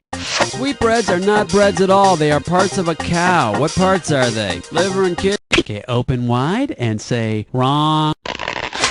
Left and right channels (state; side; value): identical; both; correlation 1.00